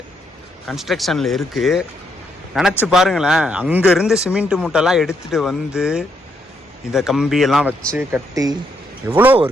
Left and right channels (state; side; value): normal; both; correlation 0.76